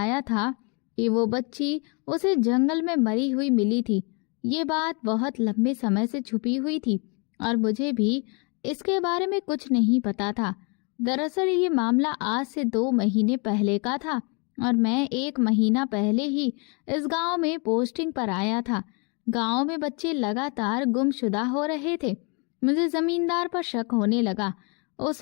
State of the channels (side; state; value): right; quieter; 33.4 dB